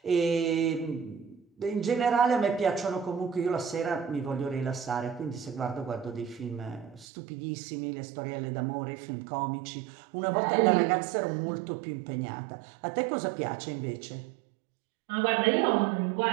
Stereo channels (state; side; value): drops out; left; at 7.1 s